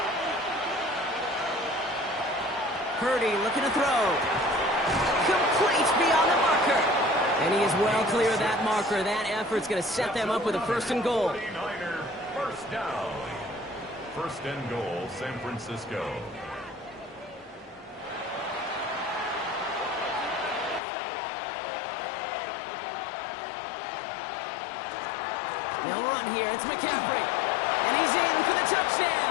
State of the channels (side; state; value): right; drops out; at 20.8 s